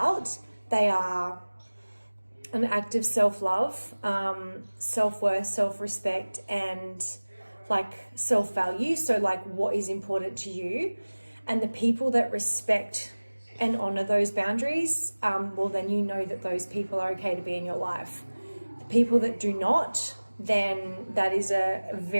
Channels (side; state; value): both; inverted; correlation -1.00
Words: They are an act of self-love, self-worth, self-respect, and self-value. So what is important to you, and the people that respect and honor those boundaries, then you know that those people are okay to be in your life. The people that do not, then that is a